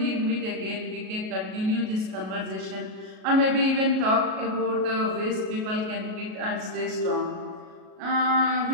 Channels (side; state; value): left; late; 37 ms